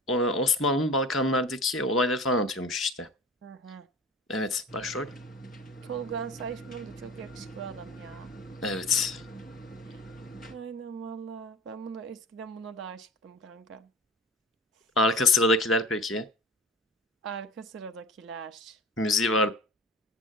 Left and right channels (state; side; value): normal; both; correlation 0.37